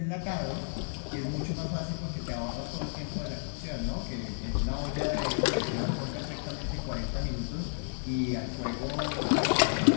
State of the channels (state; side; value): silent; right; 57 dB below the other